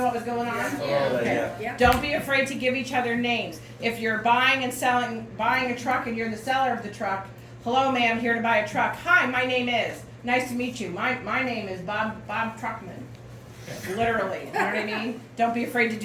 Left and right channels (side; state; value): both; identical; correlation 1.00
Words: what was going on? Okay. Yeah. Don't be afraid to give each other names. If you're buying a truck and you're the seller of the truck, hello ma'am, here to buy a truck. Hi, my name is. Nice to meet you. My name is Bob Truckman. Literally, you know what I mean? Don't be afraid to